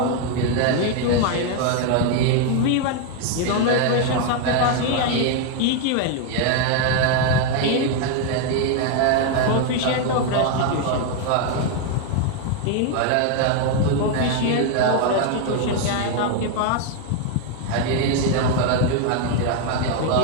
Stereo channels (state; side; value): different; both; correlation 0.00